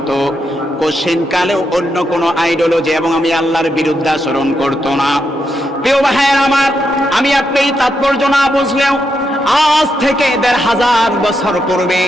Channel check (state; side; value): normal; both; correlation 0.82